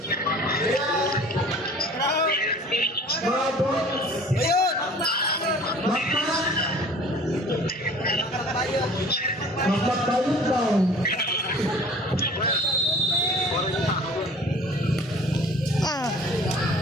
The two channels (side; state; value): both; normal; correlation 0.47